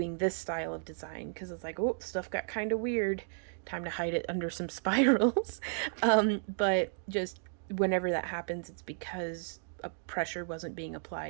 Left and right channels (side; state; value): left; silent; digital silence